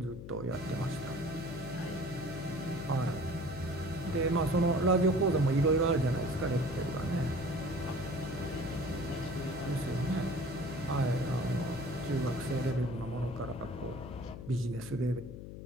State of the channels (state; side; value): noise; left; hum, 10 dB below the sound